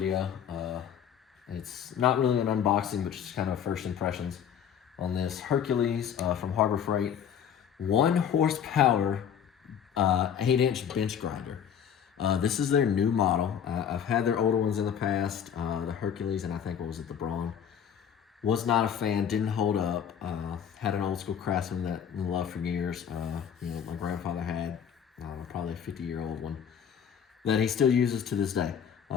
It's not really an unboxing, but just kind of first impressions on this Hercules from Harbor Freight. 1 horsepower, 8-inch bench grinder. This is their new model. I've had their older ones in the past, the Hercules, and I think, what was it, the Braun. Was not a fan, didn't hold up. Had an old school Craftsman that I loved for years. My grandfather had probably a 50-year-old one that he still uses to this day.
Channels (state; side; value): quieter; right; 8.3 dB